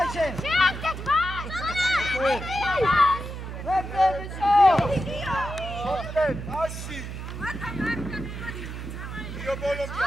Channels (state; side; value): noise; right; hum, 8 dB below the sound